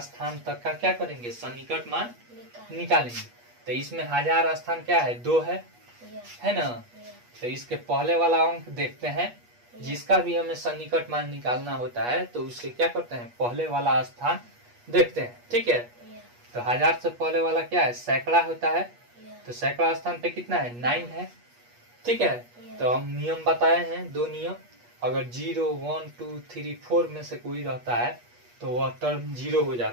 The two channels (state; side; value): late; left; 8.3 ms